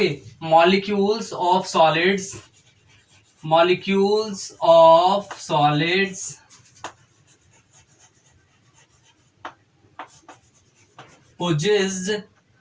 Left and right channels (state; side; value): identical; both; correlation 1.00